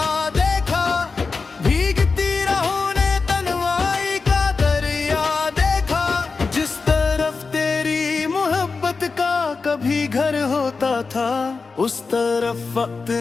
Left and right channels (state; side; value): quieter; right; 4.4 dB